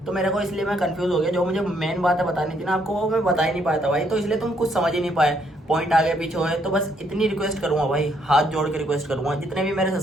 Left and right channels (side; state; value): both; normal; correlation 0.71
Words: तो मेरे को इसलिए मैं कंफ्यूज हो गया। जो मुझे मेन बातें बतानी थी ना आपको, वो मैं बता ही नहीं पाया था भाई, तो इसलिए तुम कुछ समझ ही नहीं पाए, पॉइंट आगे पीछे हुए। तो बस इतनी रिक्वेस्ट करूंगा भाई, हाथ जोड़ के रिक्वेस्ट करूंगा, जितने भी मेरे